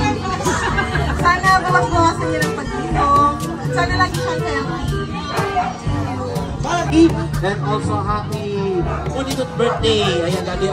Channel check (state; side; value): identical; both; correlation 1.00